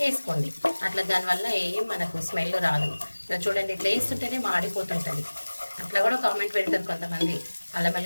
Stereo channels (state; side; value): inverted; both; correlation -1.00